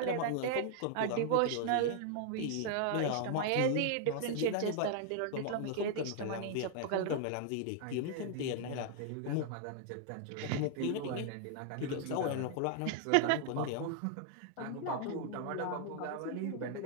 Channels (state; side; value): different; both; correlation 0.00